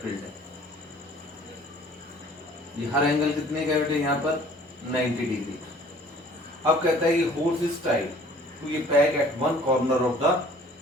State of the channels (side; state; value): both; normal; correlation 0.52